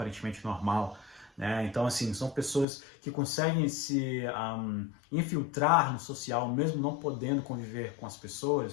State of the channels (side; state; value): right; drops out; at 2.7 s